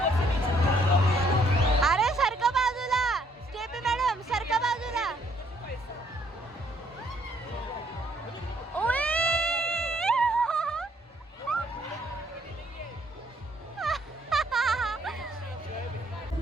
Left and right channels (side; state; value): both; normal; correlation 0.67